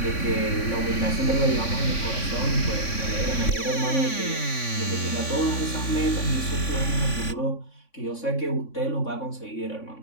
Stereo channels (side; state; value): right; late; 3.5 ms